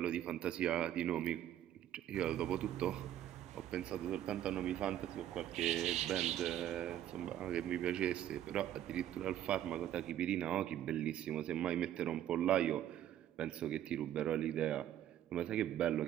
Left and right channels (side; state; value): left; quieter; 11.6 dB